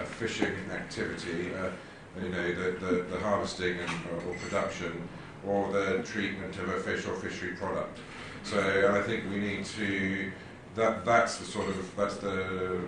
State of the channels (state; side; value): identical; both; correlation 1.00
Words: fishing activity, you know, the harvesting or production, or the treatment of a fish or fishery product. So I think we need to, that's the